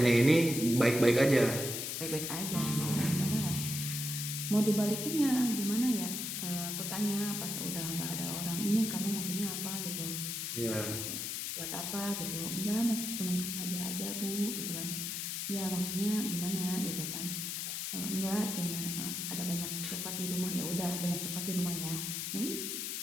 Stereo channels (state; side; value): noise; left; hiss, 3 dB below the sound